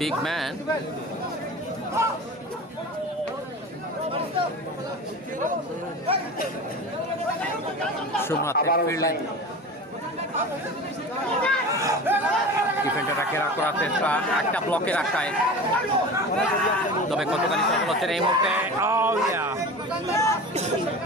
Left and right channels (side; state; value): both; normal; correlation 0.33